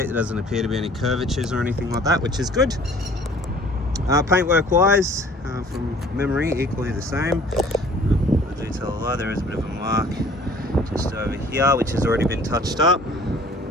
There doesn't appear to be any curvatures or anything like that, which is good. Paintwork wise, from memory, equally the same. I do tell a lie, there is a bit of a mark just over here, which has already been touched up.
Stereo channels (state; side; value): normal; both; correlation 0.52